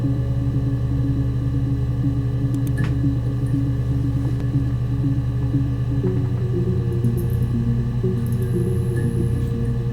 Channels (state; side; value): identical; both; correlation 1.00